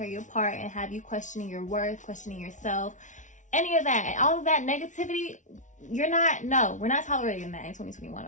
you apart and have you questioning your worth, questioning yourself. Any of that, all of that negativity, we're not tolerating that in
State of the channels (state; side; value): late; right; 0.36 ms